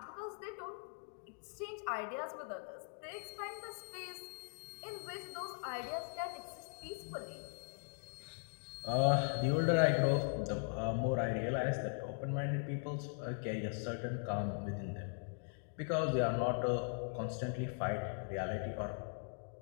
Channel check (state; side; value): silent; right; 51 dB below the other